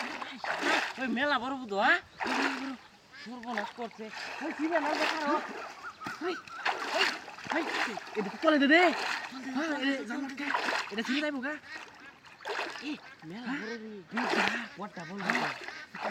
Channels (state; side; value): identical; both; correlation 1.00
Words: ওই মেলা বড় বুধ হ্যাঁ সর্বনাশ করছে ওই ছিবে না দেখারো ওই ওই এটা তো চলে দে হ্যাঁ এটা ছিড়ে যাইবো গা এ মেলা বড় রে ওটা বল